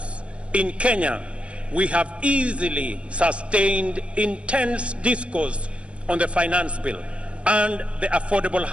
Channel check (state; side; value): late; left; 0.060 ms